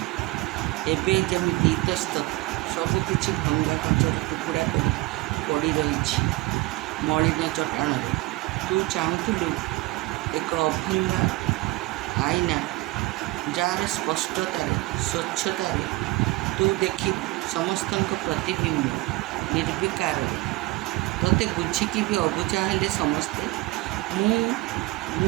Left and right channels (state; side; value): quieter; left; 20.5 dB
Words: ଏବେ ଯେମିତି ଇତସ୍ତତ ସବୁ କିଛି ଭଙ୍ଗା କାଚର ଟୁକୁଡ଼ା କରି ପଡ଼ି ରହିଛି ମଳିନ ଚଟାଣରେ। ତୁ ଚାହୁଁଥିଲୁ ଏକ ଅଭଙ୍ଗା ଆଇନା ଯାହାର ସ୍ପଷ୍ଟତାରେ, ସ୍ୱଚ୍ଛତାରେ ତୁ ଦେଖିବୁ ସମସ୍ତଙ୍କ ପ୍ରତିବିମ୍ବ ନିର୍ବିକାରରେ। ତୋତେ ବୁଝିକି ବି ଅବୁଝା ହେଲେ ସମସ୍ତେ।